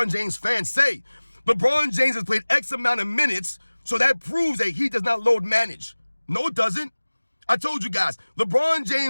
James fans say, LeBron James has played X amount of minutes, so that proves that he does not load manage. No, it doesn't. I told you guys, LeBron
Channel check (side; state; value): both; inverted; correlation -1.00